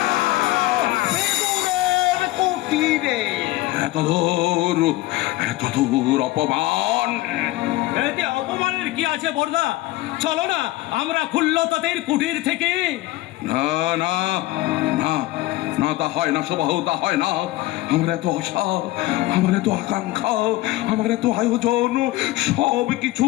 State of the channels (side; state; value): right; quieter; 17.9 dB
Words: কুটিরে। এত দূর অপমান। এতে অপমানের কি আছে বর্দা? চলো না আমরা খুল্লতাদের কুটির থেকে। না না না না, তা হয় না সুবাহু, তা হয় না। আমার এত আশা, আমার এত আকাঙ্ক্ষা, আমার এত আয়োজন, সব কিছু